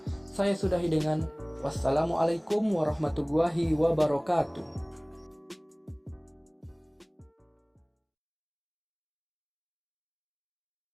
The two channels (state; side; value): identical; both; correlation 1.00